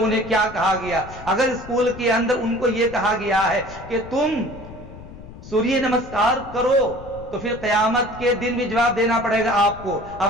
کیا کہا گیا. اگر اسکول کے اندر ان کو یہ کہا گیا ہے کہ تم سوریہ نمسکار کرو تو پھر قیامت کے دن بھی جواب دینا پڑے گا آپ کو. اب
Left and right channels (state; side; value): noise; left; rumble, 16 dB below the sound